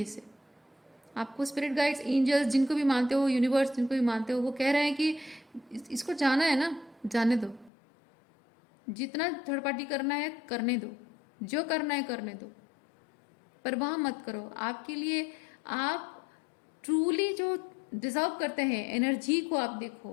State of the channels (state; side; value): drops out; right; at 7.7 s